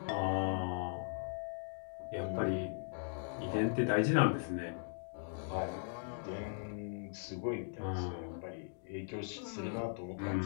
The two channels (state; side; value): silent; right; digital silence